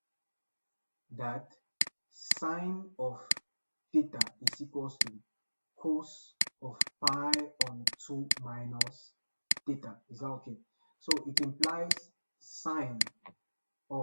that sine of theta is equals to cos of pi on 2 minus theta. Is that okay? So it implies sine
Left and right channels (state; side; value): inverted; both; correlation -1.00